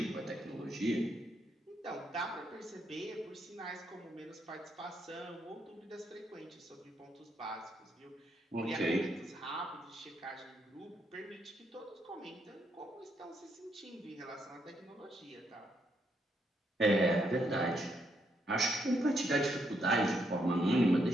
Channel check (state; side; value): normal; both; correlation 0.77